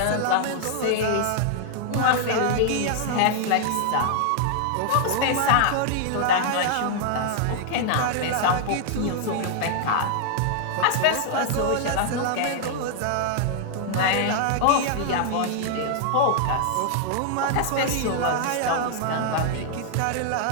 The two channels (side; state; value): both; different; correlation -0.01